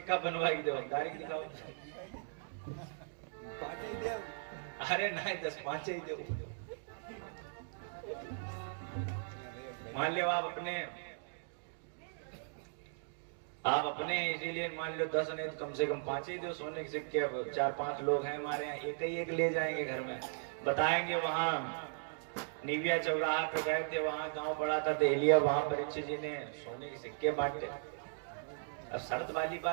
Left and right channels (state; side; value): silent; left; digital silence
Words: बनवा के दो, डायरेक्ट दिखाओ। अरे नहीं, 10 5 ही दो। मान लो आप अपने इसीलिए मान लो 10 नहीं तो कम से कम 5 ही दो सोने के सिक्के। अब 4-5 लोग हैं हमारे यहाँ, एक ही एक ले जाएंगे घर में, बताएंगे वहां निविया चौराहा पे गए थे, वहां गांव पड़ा था देहलिया, वहां परीक्षित जी ने सोने के सिक्के बांटे। अब शर्त वाली